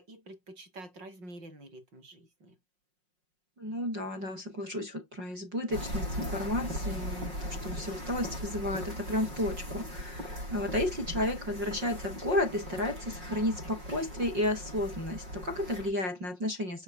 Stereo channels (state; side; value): late; left; 5.5 ms